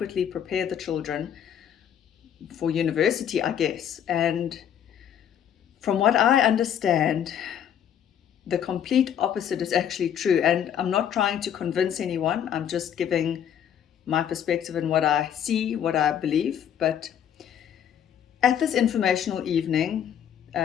prepare the children for university, I guess. And from what I understand, the complete opposite is actually true. And I'm not trying to convince anyone. I'm just giving my perspective and what I see, what I believe. But at this informational evening,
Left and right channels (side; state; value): right; quieter; 9.2 dB